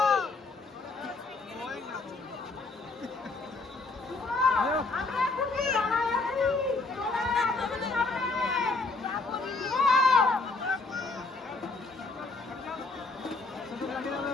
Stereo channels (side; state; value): right; quieter; 3.7 dB